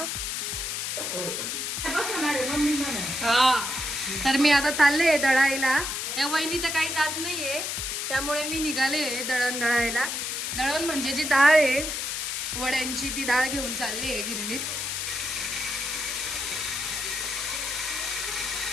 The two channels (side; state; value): left; noise; hiss, 2 dB below the sound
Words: हा तर मी आता चालले दळायला. या वहिनी तर काही जात नाहीये, त्यामुळे मी निघाले दळण दळायला. दळण म्हणजे जी डाळ आहे वड्यांची, ती डाळ घेऊन चालली आहे गिरणीत.